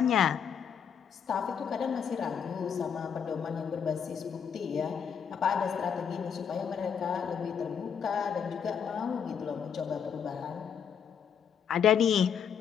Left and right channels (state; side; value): quieter; right; 7.5 dB